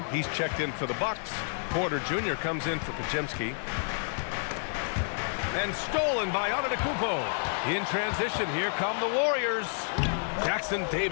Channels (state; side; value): silent; right; 58 dB below the other